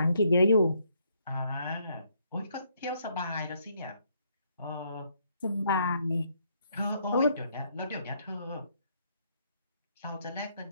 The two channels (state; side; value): inverted; both; correlation -0.71